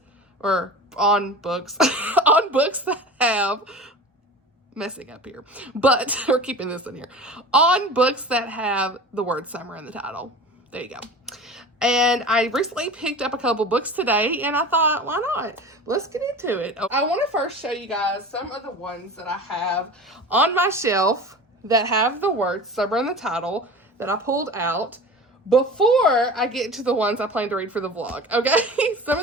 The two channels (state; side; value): normal; both; correlation 0.35